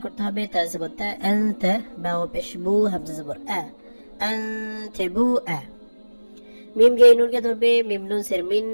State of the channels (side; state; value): both; inverted; correlation -1.00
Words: করতে হবে, তা জবর তা, আনতা, বা ও পেশ বু, হামজা জবর আ, আনতাবু আ। মিম গে নুনকে ধরবে, মিম নুন সের মিন,